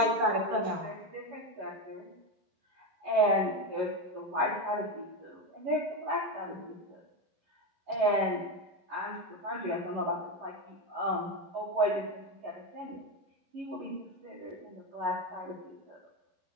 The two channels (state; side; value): late; left; 11 ms